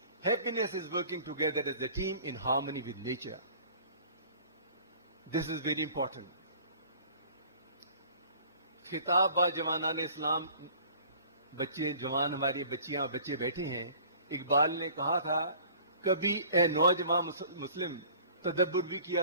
Happiness is working together as a team in harmony with nature. This is very important. खिताब बा जवानान इस्लाम, बच्चे जवान हमारी बच्चियां बच्चे बैठे हैं. इकबाल ने कहा था, कभी ए नौजवान मुस्लिम तदब्बुर भी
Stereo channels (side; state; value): both; inverted; correlation -0.49